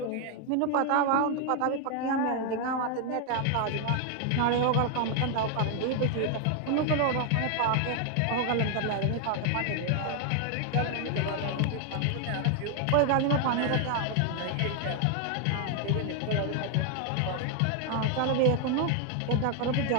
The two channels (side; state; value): both; different; correlation 0.00